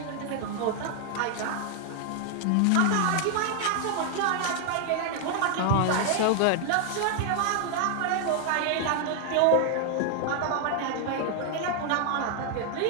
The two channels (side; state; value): both; different; correlation 0.00